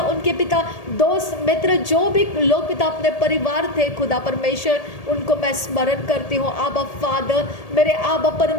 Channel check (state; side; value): late; right; 1.8 ms